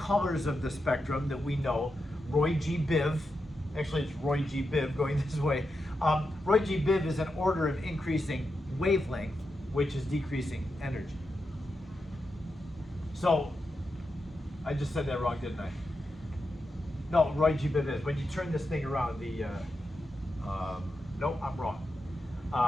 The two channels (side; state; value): both; normal; correlation 0.87